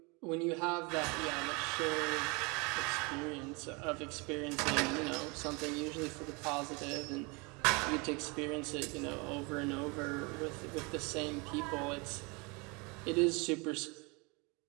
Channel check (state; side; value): quieter; left; 29.0 dB